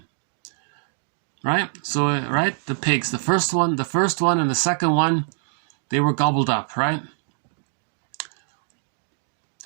Right? So, right, the pigs, the first one and the second one, they were gobbled up, right?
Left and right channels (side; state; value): left; silent; digital silence